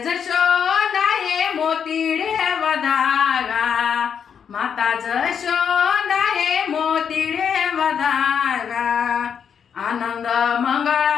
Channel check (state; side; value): quieter; right; 7.4 dB